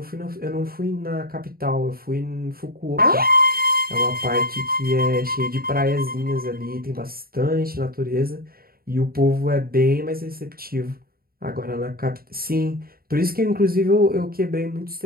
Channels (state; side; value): late; left; 0.43 ms